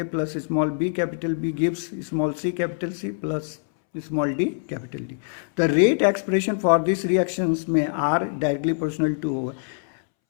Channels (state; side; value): silent; right; 62 dB below the other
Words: plus small B capital B gives small C capital C plus small D capital D. The rate expression for this reactions में are directly proportional to